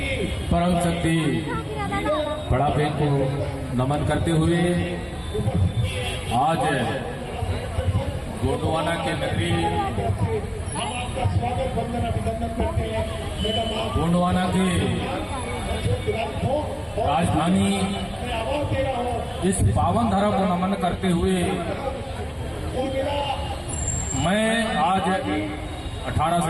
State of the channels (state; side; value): identical; both; correlation 1.00